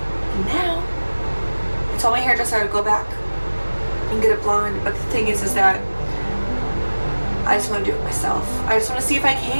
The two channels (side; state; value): both; inverted; correlation -1.00